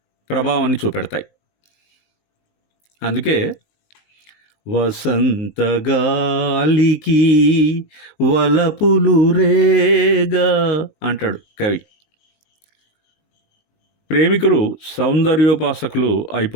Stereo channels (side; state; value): right; late; 19 ms